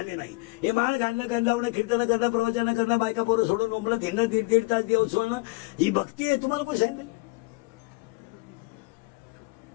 नाही. हे माळ घालणं, गण लावणं, कीर्तन करणं, प्रवचन करणं, बायका पोरं सोडून मुंबईत हिंडणं, 1.5 तास देव सोडणं, ही भक्ती आहे. तुम्हाला कोण सांगितलं.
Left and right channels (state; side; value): quieter; right; 24.8 dB